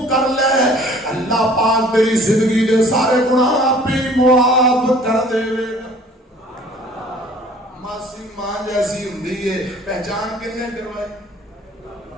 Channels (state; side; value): normal; both; correlation 0.51